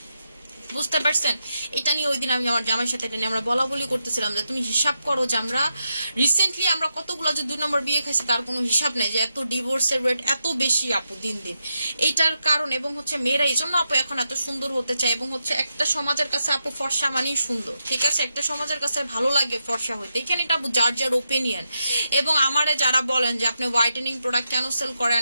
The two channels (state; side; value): inverted; both; correlation -0.85